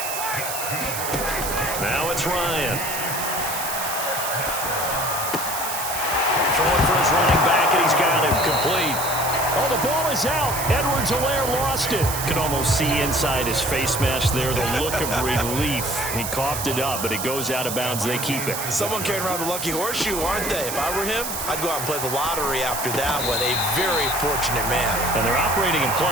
Now it's Ryan. Throwing for his running back, and he's got him complete. Oh, the ball is out. Edwards-Helaire lost it. Could almost see inside his face mask there the look of relief. He coughed it up, but it goes out of bounds. They keep it. Someone carrying around the lucky horseshoe, aren't they? If I were him, I'd go out and play the lottery after that one. A very fortunate man. And they're operating in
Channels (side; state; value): right; noise; hiss, 4 dB below the sound